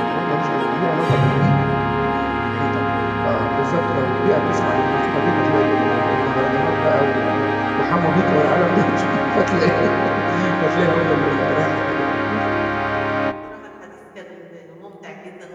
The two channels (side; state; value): both; identical; correlation 1.00